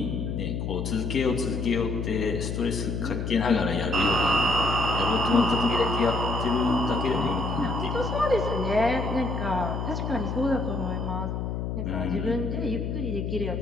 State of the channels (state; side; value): noise; left; hum, 3 dB below the sound